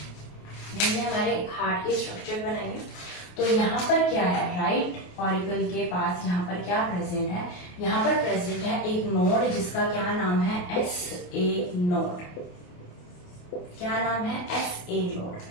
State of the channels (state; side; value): late; right; 28 ms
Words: हमारे हार्ट की स्ट्रक्चर बनाएंगे। तो यहाँ पर क्या है, राइट ऑरिकल के पास यहाँ पर क्या प्रेजेंट है, यहाँ पर प्रेजेंट है एक नोड जिसका क्या नाम है, SA नोड। क्या नाम है, SA